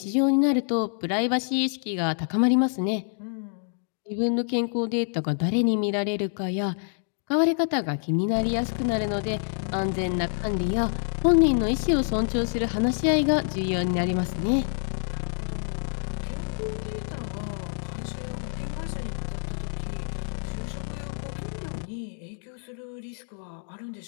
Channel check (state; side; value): silent; right; 60 dB below the other